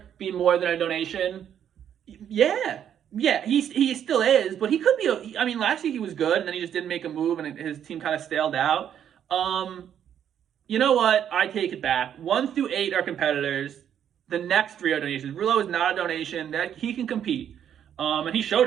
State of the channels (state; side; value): quieter; left; 9.4 dB